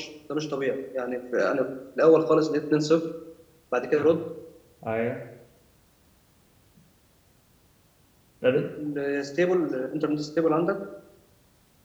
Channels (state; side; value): identical; both; correlation 1.00